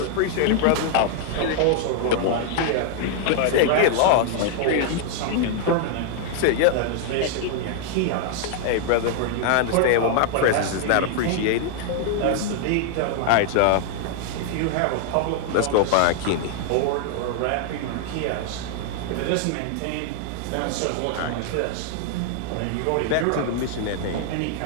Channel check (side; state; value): both; different; correlation 0.00